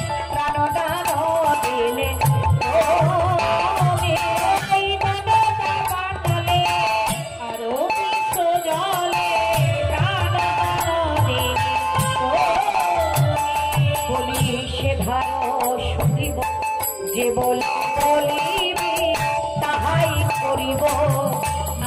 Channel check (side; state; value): both; identical; correlation 1.00